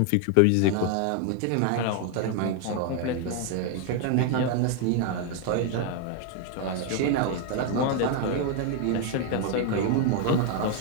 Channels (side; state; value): both; different; correlation 0.00